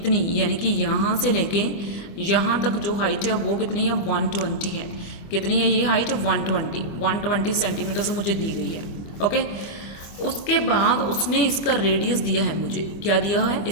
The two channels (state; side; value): late; right; 25 ms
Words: यानी कि यहाँ से लेके यहाँ तक जो हाइट है वो कितनी है 120 है। कितनी है ये हाइट 120 सेंटीमीटर मुझे दी गई है। ओके, उसके बाद उसने इसका रेडियस दिया है मुझे, क्या दिया है,